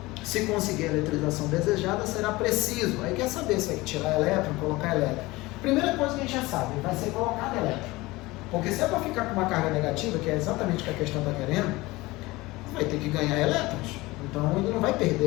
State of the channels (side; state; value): right; quieter; 20.8 dB